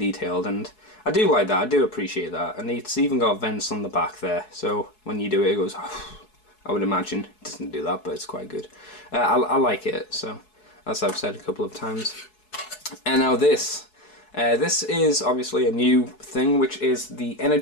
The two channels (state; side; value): late; right; 4.7 ms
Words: and I do like that, I do appreciate that, and it's even got vents on the back there, so when you do it, it goes, I would imagine. It doesn't do that, but it's quite good. I like it, so as I've said a couple of times. And now this is obviously a new thing, which is the